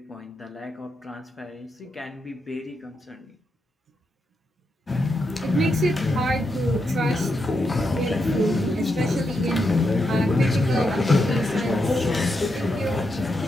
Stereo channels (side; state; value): both; normal; correlation 0.83